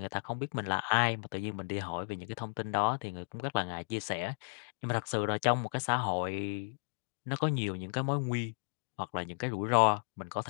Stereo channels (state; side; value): silent; right; digital silence